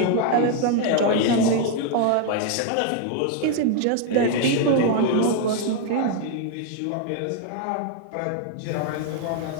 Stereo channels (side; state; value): both; different; correlation 0.01